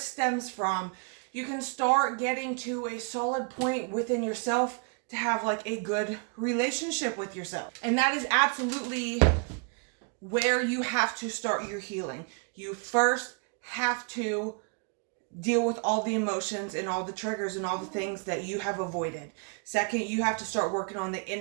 from, you can start getting to a solid point within yourself to have like a good relationship with yourself. And that is absolutely where you have to start your healing. You first have to deal with all the emotions and all the triggers and all the things that you have avoided. Second, you have to start working on the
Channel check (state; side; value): quieter; left; 39.1 dB